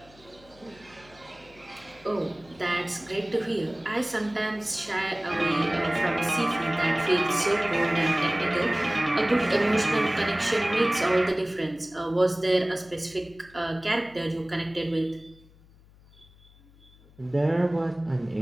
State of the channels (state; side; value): noise; left; hum, 26 dB below the sound